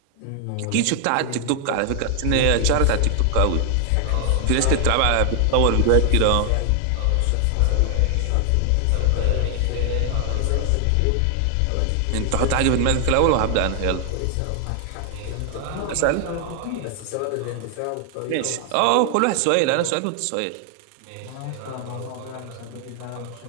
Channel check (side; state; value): both; different; correlation 0.00